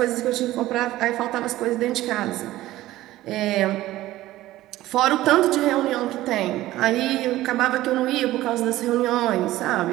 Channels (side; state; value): left; quieter; 15.8 dB